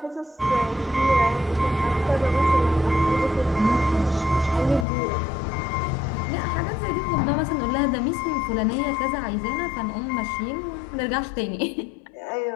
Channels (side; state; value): right; drops out; at 4.9 s